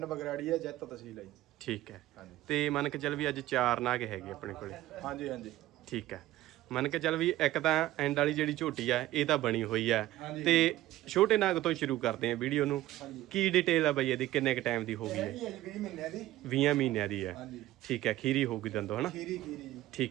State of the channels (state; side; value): quieter; left; 15.5 dB